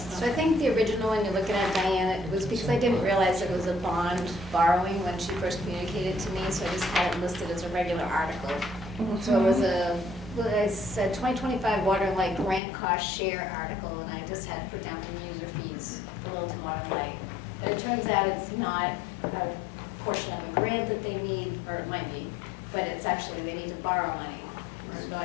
I think the original one you're looking at, Diane, it was because I didn't realize it was a bond borrowing when she first communicated to me, so I just had it listed as a regular article. So it was I said 2025 Water and Light grant cost share article, and I just had to put down from user fees for Littleton Water and Light. But it turns out it's not a portion of a grant that they need, or it might be, but it's actually, they need to borrow money. So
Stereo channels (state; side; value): drops out; right; at 12.6 s